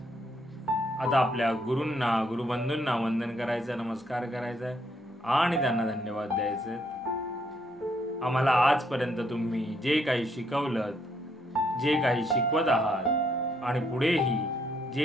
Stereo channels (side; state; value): both; normal; correlation 0.72